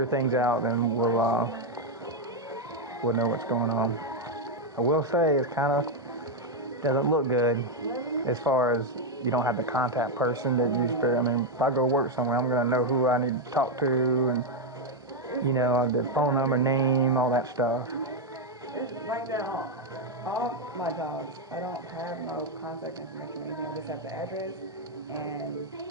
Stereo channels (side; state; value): both; normal; correlation 0.02